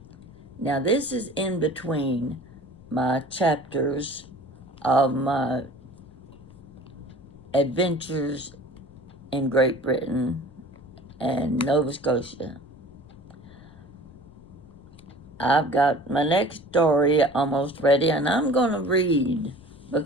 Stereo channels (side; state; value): left; noise; rumble, 24 dB below the sound